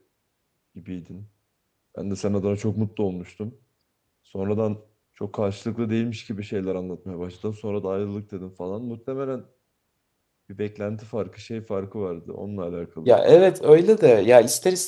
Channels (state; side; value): identical; both; correlation 1.00